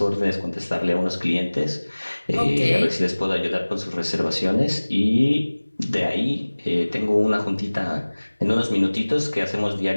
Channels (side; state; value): both; inverted; correlation -1.00